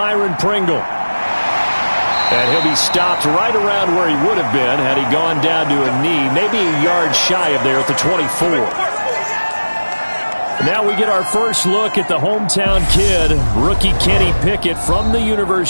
Pringle. And he'll be stopped right around where he would have been had he gone down to a knee, maybe a yard shy of there at the 24. Now we get our first look at the hometown kid, rookie Kenny Pickett from the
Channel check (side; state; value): both; inverted; correlation -1.00